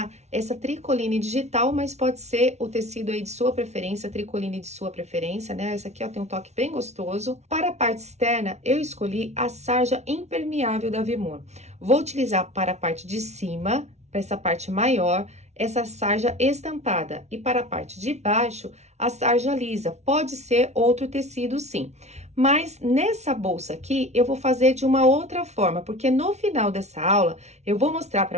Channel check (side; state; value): left; late; 0.32 ms